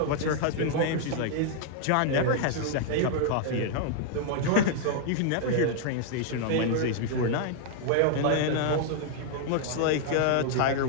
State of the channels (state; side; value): different; both; correlation -0.01